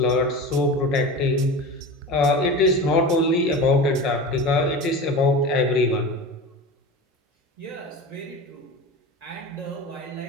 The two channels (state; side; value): normal; both; correlation 0.30